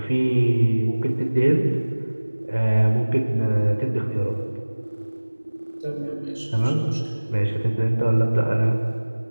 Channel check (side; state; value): both; inverted; correlation -1.00